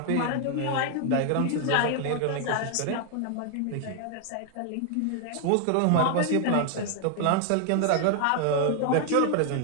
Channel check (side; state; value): both; different; correlation 0.00